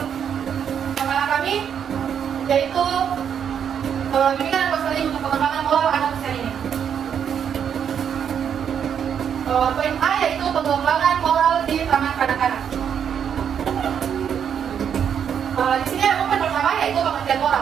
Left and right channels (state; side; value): quieter; left; 8.2 dB